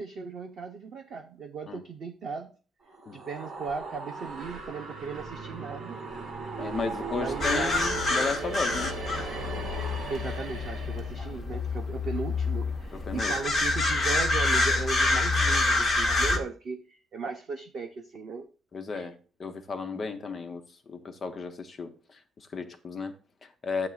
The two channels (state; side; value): normal; both; correlation 0.74